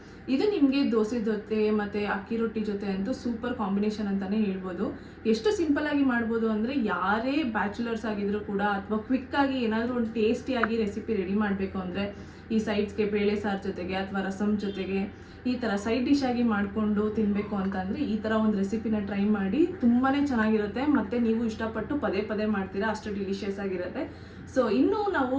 ಇದು ನಿಮಗೆ ದೋಸೆ ಜೊತೆ ಮತ್ತು ಅಕ್ಕಿ ರೊಟ್ಟಿ ಜೊತೆ ಅಂತೂ ಸೂಪರ್ ಕಾಂಬಿನೇಷನ್ ಅಂತಲೇ ಹೇಳ್ಬೋದು. ಎಷ್ಟು ಸಿಂಪಲ್ಲಾಗಿ ಮಾಡ್ಬೋದು ಅಂದರೆ ಯಾರೇ ಬ್ಯಾಚುಲರ್ಸ್ ಆಗಿದ್ರು ಕೂಡ ಅಥವಾ ಕ್ವಿಕ್ಕಾಗಿ ಏನಾದರೂ ಒಂದು ಟೇಸ್ಟಿಯಾಗಿ ರೆಸಿಪಿ ರೆಡಿ ಮಾಡಬೇಕು ಅಂದರೆ ಈ ಸೈಡ್ಸ್ಗೆ ಬೇಳೆ ಸಾರು ಜೊತೆಗೆ ಅಥವಾ ರಸಮ್ ಜೊತೆಗೆ ಈ ಥರ ಸೈಡ್ ಡಿಶ್ ಆಗಿ ಮಾಡಿಕೊಂಡು ತಿನ್ನಬೇಕು ಅಂತಂದರೆ ಈ ಥರ ಒಂದು ರೆಸಿಪಿನ ಟ್ರೈ ಮಾಡಿ. ತುಂಬಾ ಚೆನ್ನಾಗಿರುತ್ತೆ ಮತ್ತು ನೀವು ಇಷ್ಟಪಟ್ಟು ಪದೇ ಪದೇ ಮಾಡ್ತೀರಾ, ಅಷ್ಟು ಡಿಲಿಷಿಯಸ್ ಆಗಿರುತ್ತೆ. ಸೊ ಇನ್ನೂ ನಾವು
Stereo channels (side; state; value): both; identical; correlation 1.00